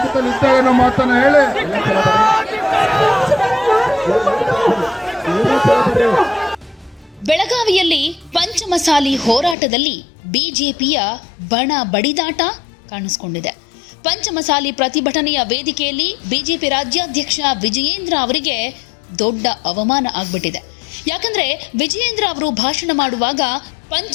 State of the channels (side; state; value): right; drops out; at 9.6 s